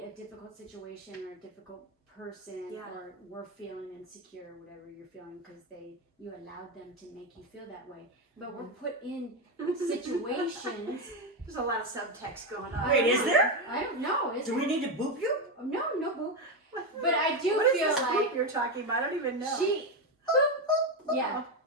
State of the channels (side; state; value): both; normal; correlation 0.10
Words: a difficult situation or a difficult person or we're feeling insecure or whatever you're feeling because you allowed them to make you feel that way. But we're put in situations. There's a lot of subtext going on. Wait, is there? I don't know. Do we need to boop you? No boop. But I do what feel is this like boop you're talking about. I don't even know. Yeah.